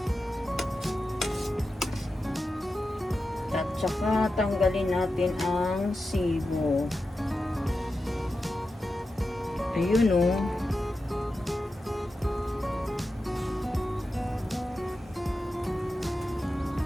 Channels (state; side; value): normal; both; correlation 0.91